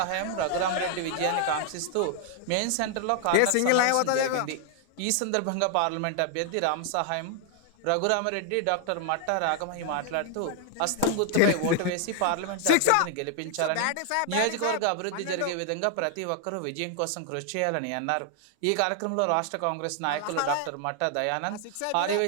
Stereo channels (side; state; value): both; different; correlation 0.00